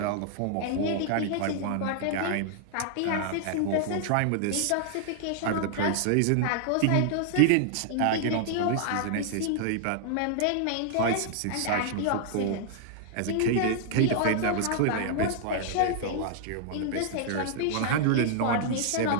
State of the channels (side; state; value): both; different; correlation 0.00